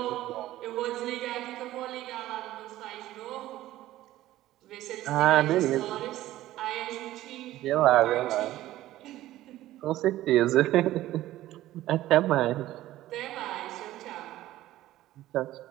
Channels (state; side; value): quieter; left; 15.0 dB